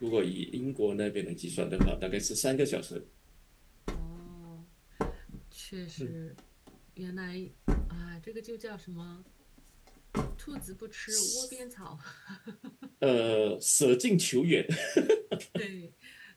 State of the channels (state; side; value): identical; both; correlation 1.00